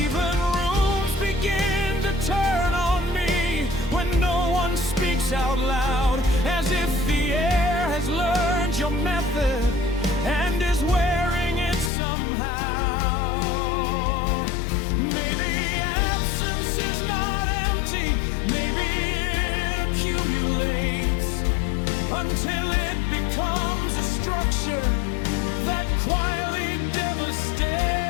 rooms begin to turn on me when no one speaks out loud, as if the air has learned your method and is wearing it somehow. Maybe absence is not empty, maybe it accumulates until it becomes a structure that quietly devastates.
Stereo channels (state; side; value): drops out; right; at 11.9 s